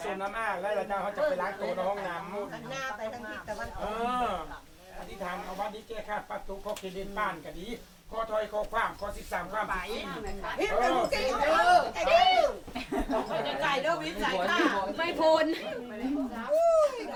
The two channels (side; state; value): both; identical; correlation 1.00